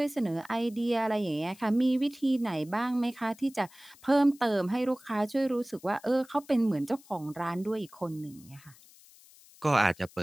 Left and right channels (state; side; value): noise; left; hiss, 24 dB below the sound